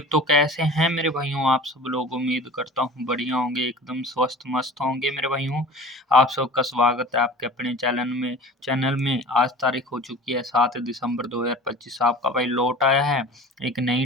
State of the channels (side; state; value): both; normal; correlation 0.39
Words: तो कैसे हैं मेरे भाइयों आप सब लोग। उम्मीद करता हूँ बढ़िया होंगे, एकदम स्वस्थ मस्त होंगे मेरे भाइयों। आप सबका स्वागत है आपके अपने चैनल में। आज तारीख हो चुकी है 7 दिसंबर 2025। आपका भाई लौट आया है एक